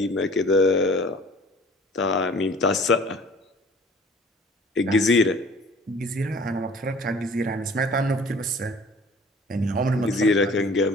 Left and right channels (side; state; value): both; normal; correlation 0.49